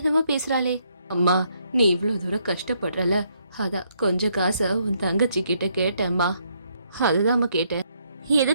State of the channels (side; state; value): both; inverted; correlation -0.72